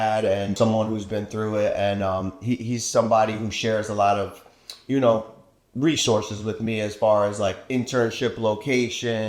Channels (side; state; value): both; identical; correlation 1.00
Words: and someone who's been through it. And he's somebody who shares a lot of, resources with me as far as internship